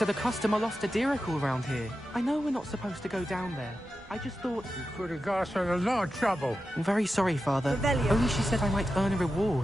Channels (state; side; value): normal; both; correlation 0.91